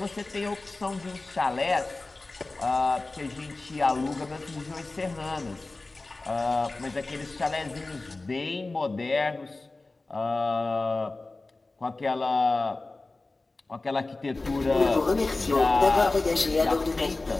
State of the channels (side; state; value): right; quieter; 3.3 dB